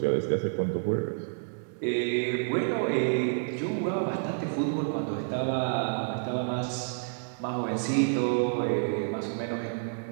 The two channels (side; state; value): left; silent; digital silence